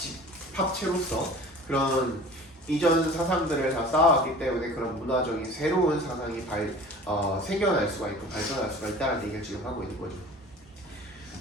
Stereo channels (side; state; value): both; normal; correlation 0.43